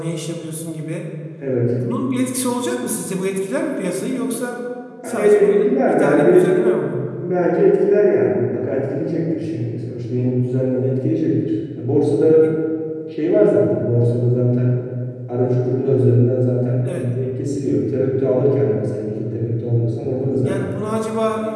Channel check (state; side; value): identical; both; correlation 1.00